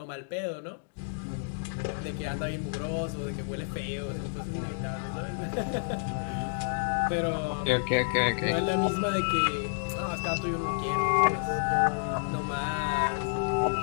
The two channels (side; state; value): right; silent; digital silence